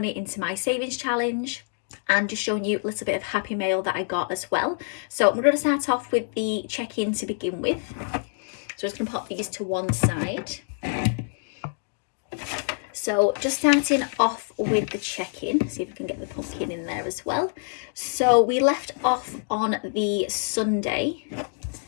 into my savings challenge and just showing you a little bit of happy mail that I got as well. So I'm going to start off with the check-in to begin with. So I'm just going to pop these to one side. So just starting off with the check-in, see if we can get the pumpkin in there as well. So we left off on the Sunday,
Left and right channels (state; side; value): silent; right; digital silence